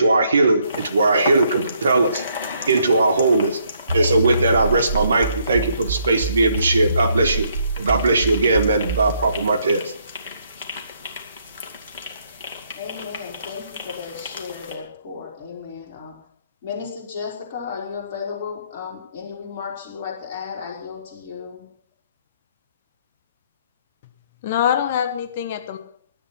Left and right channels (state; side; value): inverted; both; correlation -0.70